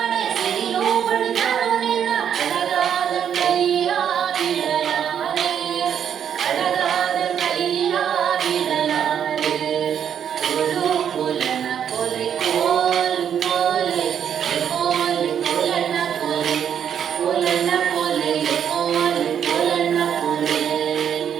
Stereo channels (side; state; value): left; quieter; 8.6 dB